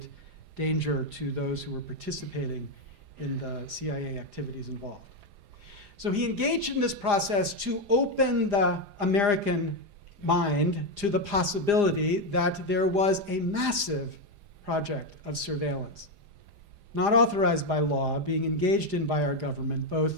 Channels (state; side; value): late; left; 4.9 ms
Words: danger to those who were participating in the CIA activities involved. So he engaged in this process to open the American mind to the possibility that there was a massive project of surveillance, not authorized by law, being engaged in by our government,